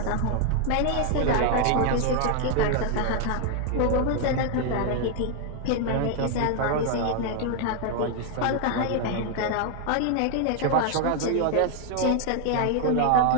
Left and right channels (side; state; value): both; different; correlation 0.00